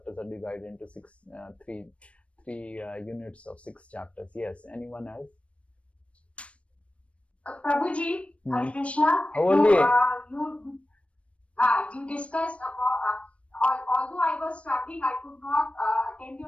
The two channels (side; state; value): right; late; 0.062 ms